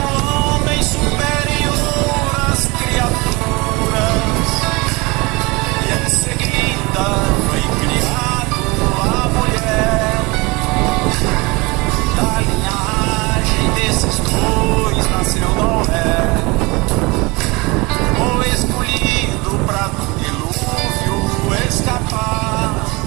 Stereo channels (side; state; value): left; quieter; 25.2 dB